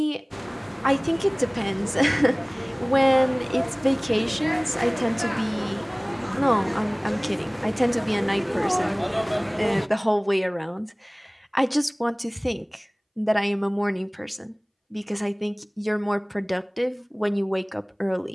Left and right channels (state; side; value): identical; both; correlation 1.00